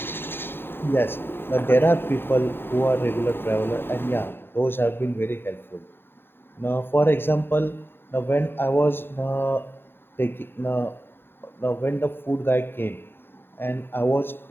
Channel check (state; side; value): late; right; 0.11 ms